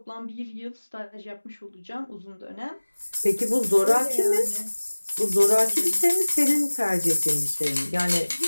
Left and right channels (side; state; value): both; inverted; correlation -1.00